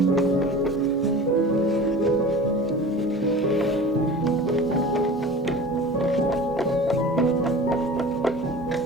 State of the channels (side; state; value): both; normal; correlation 0.37